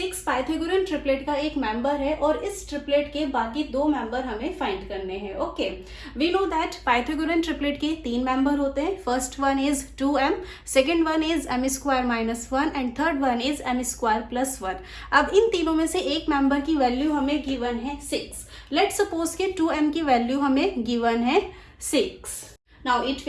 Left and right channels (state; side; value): identical; both; correlation 1.00